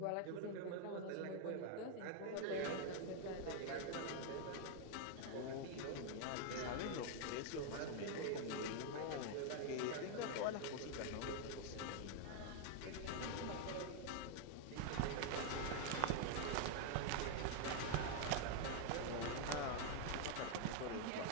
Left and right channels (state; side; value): different; both; correlation 0.00